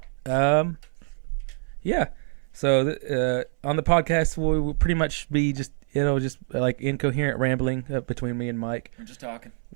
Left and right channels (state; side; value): silent; left; 59 dB below the other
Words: Yeah. So on the podcast, we will pretty much be just like incoherent rambling between me and Mike. We're just talking.